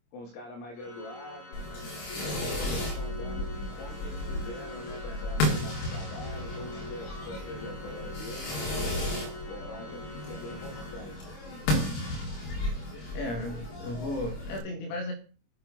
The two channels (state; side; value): late; right; 25 ms